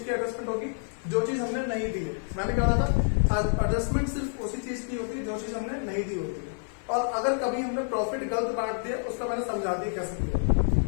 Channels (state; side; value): silent; right; 59 dB below the other